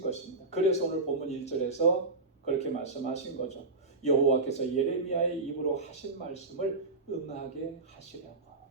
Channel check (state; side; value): quieter; left; 3.5 dB